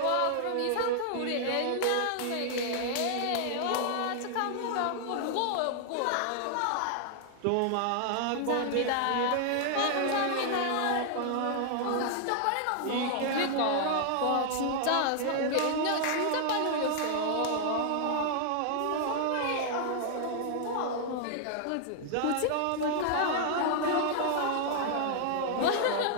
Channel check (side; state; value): both; different; correlation 0.00